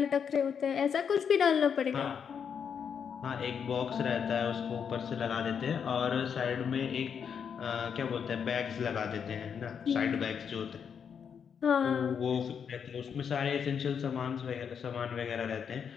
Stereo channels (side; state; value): right; quieter; 7.2 dB